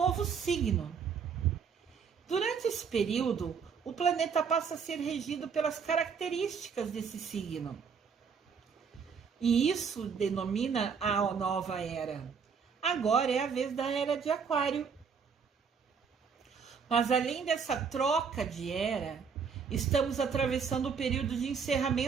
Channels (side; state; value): left; quieter; 6.2 dB